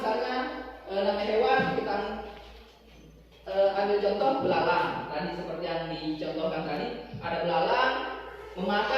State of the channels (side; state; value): both; identical; correlation 1.00